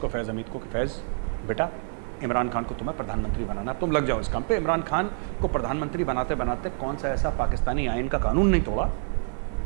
फैज़ हमीद को, कि फैज़ बेटा, इमरान खान को तुम्हें प्रधानमंत्री बनाना, तुम लग जाओ इस काम पे। इमरान खान को प्रधानमंत्री बनाते बनाते कौन सा ऐसा पाकिस्तानी आइन का कानून नहीं तोड़ा,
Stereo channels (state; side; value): silent; left; 60 dB below the other